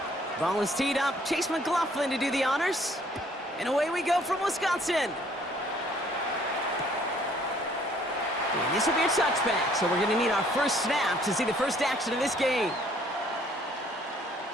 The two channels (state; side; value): normal; both; correlation 0.61